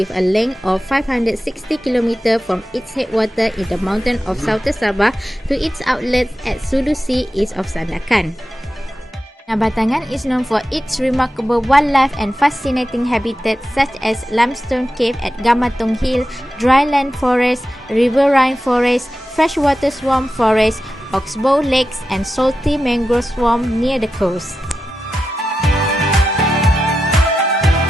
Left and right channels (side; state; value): both; normal; correlation 0.91